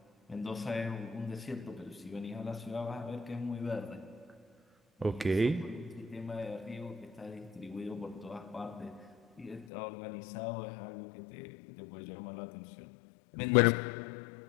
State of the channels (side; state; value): right; drops out; at 9.7 s